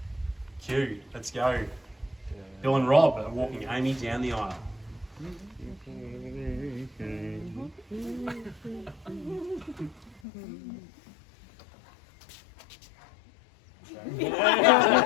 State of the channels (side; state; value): right; drops out; at 10.2 s